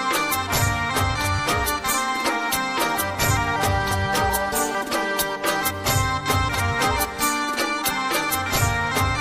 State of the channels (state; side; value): identical; both; correlation 1.00